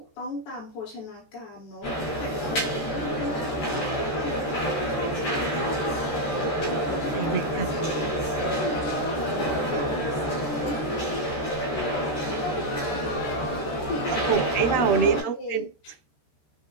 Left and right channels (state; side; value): late; right; 13 ms